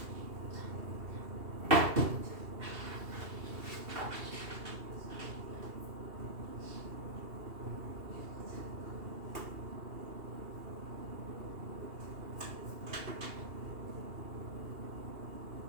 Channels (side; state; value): left; late; 2.7 ms